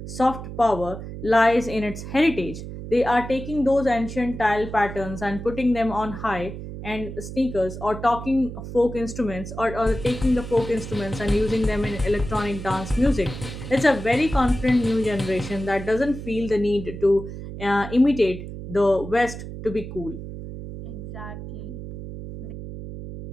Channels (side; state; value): right; noise; hum, 10 dB below the sound